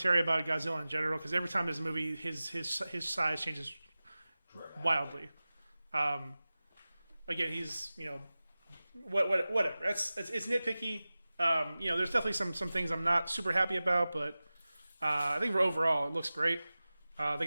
about Godzilla in general. Because every time there's a movie, his size changes wildly. Again, he's whatever. It's nitpicky. There's definitely some things I'm not super happy about, but I think overall it looks great. They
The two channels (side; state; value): both; inverted; correlation -0.97